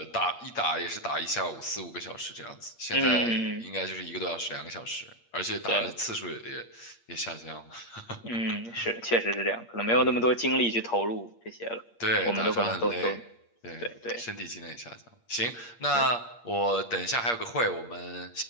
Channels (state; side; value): late; right; 8.6 ms